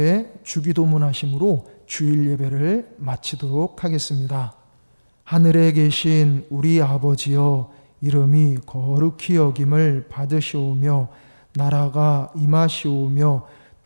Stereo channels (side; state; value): both; inverted; correlation -1.00